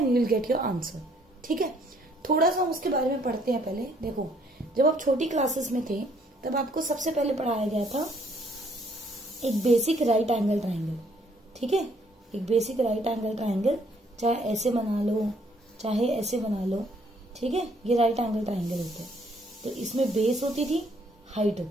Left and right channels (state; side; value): normal; both; correlation 0.65